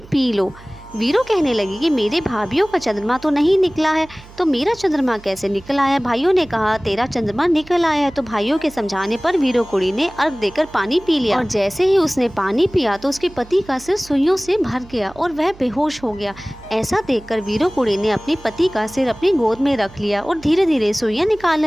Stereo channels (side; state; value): right; noise; hum, 21 dB below the sound